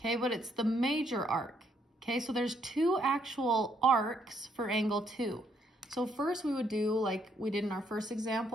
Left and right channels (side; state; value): both; normal; correlation 0.71